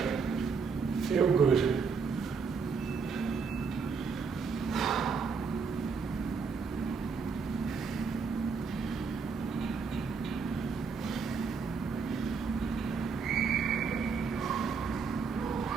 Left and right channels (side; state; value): left; quieter; 5.3 dB